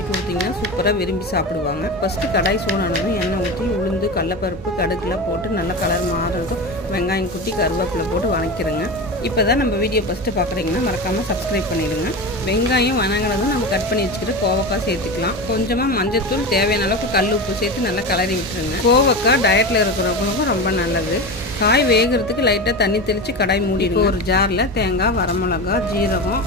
கொடுத்தீங்கன்னா சூப்பராக விரும்பி சாப்பிடுவாங்க. ஃபஸ்ட்டு கடாய் சூடானதும் எண்ணெய் ஊற்றி உளுந்து, கடலப்பருப்பு, கடுகுலாம் போட்டு நல்லா கலர் மாறுறதும் வெங்காயம் குட்டி கருவேப்பிலை போட்டு வதக்கிடுங்க. இப்போ தான் நம்ம வீடியோ ஃபஸ்ட்டு பார்க்குறீங்கன்னா மறக்காமல் சப்ஸ்கிரைப் பண்ணிடுங்க. வெங்காயம் வதங்கினதும் நம்ம கட் பண்ணி வச்சுக்கிட்டு கோவக்காய் சேர்த்துக்கலாம். கொஞ்சமாக மஞ்சத்தூள், தேவையான அளவுக்கு கல் உப்பு சேர்த்து நல்லா கலரி விட்டுருங்க. கோவக்காய் டயட்டில் இருக்கிறவங்களுக்கும் ரொம்ப நல்லது. காய் வேகிறதுக்கு லைட்டாக தண்ணி தெளித்து கடாய் மூடிடுங்க. ஒரு ஜாரில் தேங்காய், வரமிளகா, ஜீரகம்,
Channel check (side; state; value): both; normal; correlation 0.24